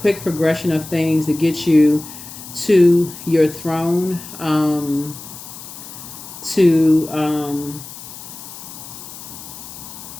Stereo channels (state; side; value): noise; left; hiss, 14 dB below the sound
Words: progression of things to get you to your throne,